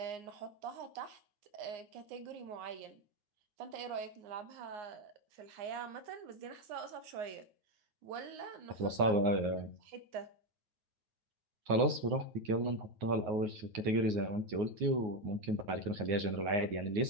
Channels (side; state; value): left; late; 9.5 ms